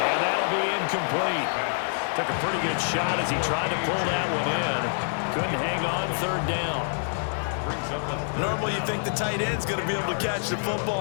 that'll be incomplete. Took a pretty good shot as he tried to pull that one in. Couldn't hang on 3rd down. Normally you think the tight end's going to be able to catch the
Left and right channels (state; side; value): silent; right; 61 dB below the other